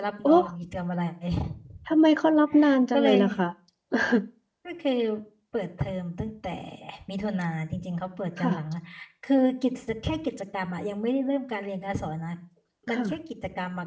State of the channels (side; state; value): both; identical; correlation 1.00